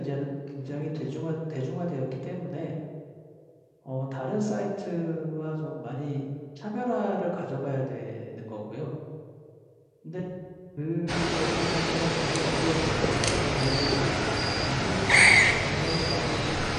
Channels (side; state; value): both; identical; correlation 1.00